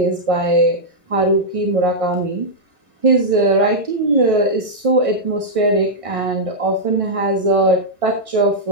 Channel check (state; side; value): late; left; 1.6 ms